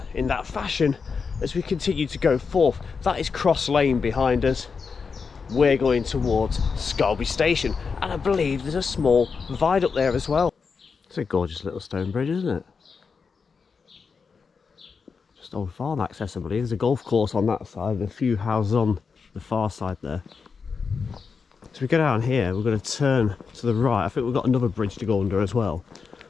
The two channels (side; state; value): right; quieter; 5.4 dB